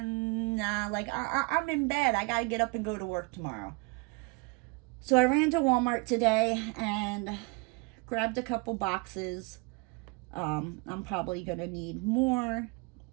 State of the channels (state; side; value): quieter; left; 28.7 dB